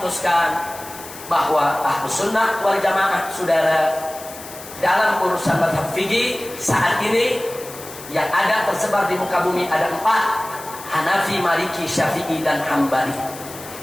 bahwa Ahlus Sunnah wal Jamaah, saudara, dalam urusan mazhab fikih saat ini yang ada tersebar di muka bumi ada 4: Hanafi, Maliki, Syafi'i, dan Hambali.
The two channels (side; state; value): left; noise; hiss, 15 dB below the sound